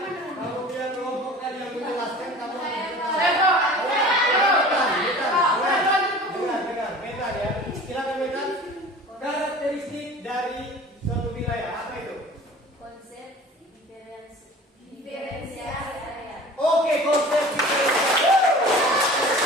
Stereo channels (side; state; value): both; normal; correlation 0.42